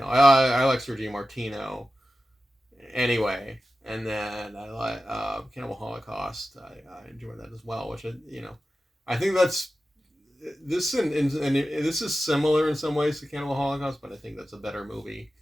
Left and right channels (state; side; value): normal; both; correlation 0.94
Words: I like Sergio Martino anyway. And then I like Cannibal Holocaust. I enjoy that as well, which I think that's and this is similar in some ways to Cannibal Holocaust, but I think that's a better movie.